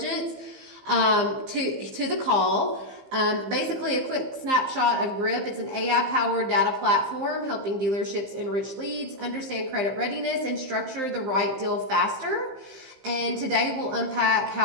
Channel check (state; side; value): late; left; 15 ms